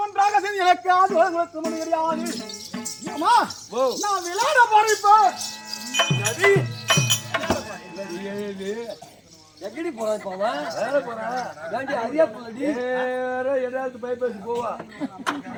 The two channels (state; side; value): identical; both; correlation 1.00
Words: ஒன்றாக சேர்ந்து எனக்கு ஆதரவு முடியாது. ஏம்மா, நான் விளையாட போறேன் இப்போ. எழுது எங்கடி போறான் இப்போ அவன்? வேலை போறான் ஏன்டி அறியா போலடி வேற எதாவது பைப்பேசி போவா